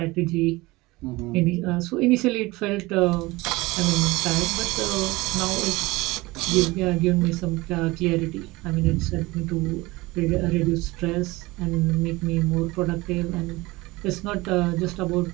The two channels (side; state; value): left; quieter; 21.4 dB